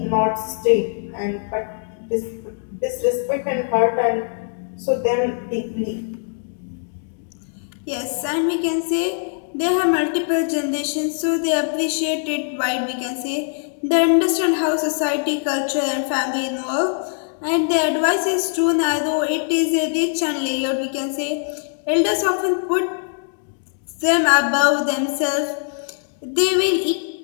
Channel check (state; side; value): silent; right; digital silence